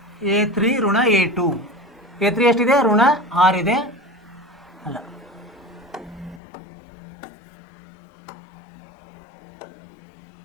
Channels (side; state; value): right; drops out; at 6.4 s